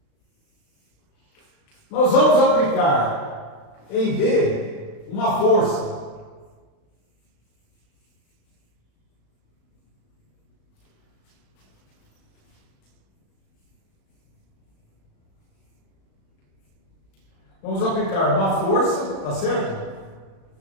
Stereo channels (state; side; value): late; right; 36 ms